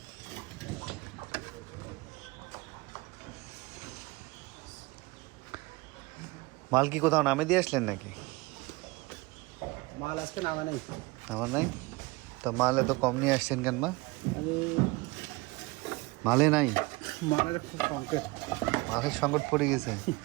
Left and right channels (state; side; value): quieter; left; 23.5 dB